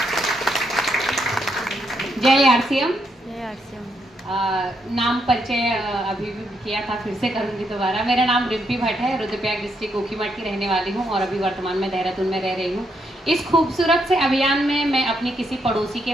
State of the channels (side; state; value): both; normal; correlation 0.78